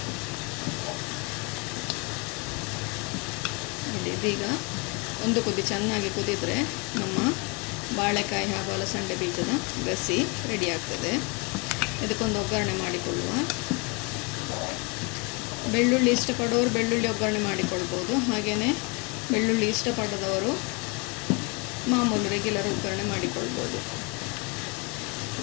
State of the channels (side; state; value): right; quieter; 31.2 dB